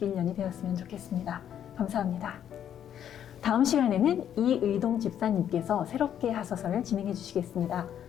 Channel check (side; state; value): right; quieter; 9.8 dB